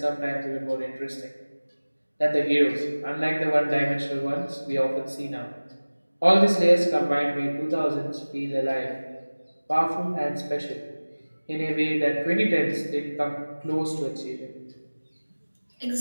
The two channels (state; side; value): inverted; both; correlation -1.00